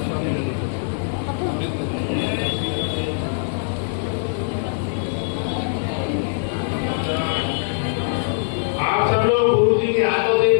आप सब लोग गुरु जी के हाथों से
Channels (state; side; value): silent; right; digital silence